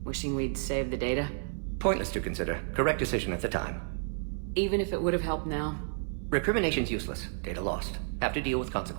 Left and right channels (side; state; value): left; silent; 57 dB below the other